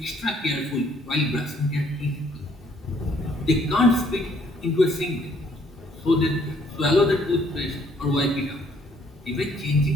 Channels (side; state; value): both; normal; correlation 0.64